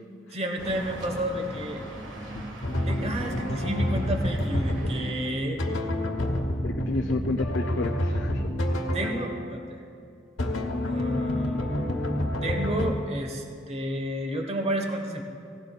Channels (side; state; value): both; normal; correlation 0.71